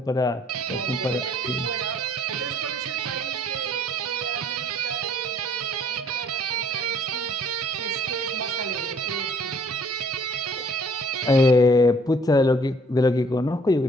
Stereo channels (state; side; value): normal; both; correlation 0.59